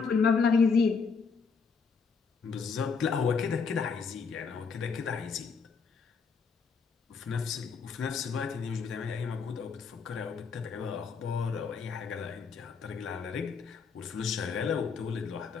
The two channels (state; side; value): quieter; right; 5.3 dB